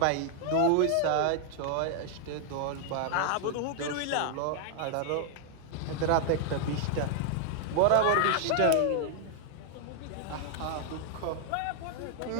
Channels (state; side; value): different; both; correlation 0.00